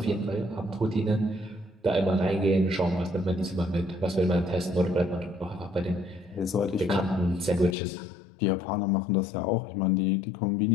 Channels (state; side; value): drops out; right; at 7.8 s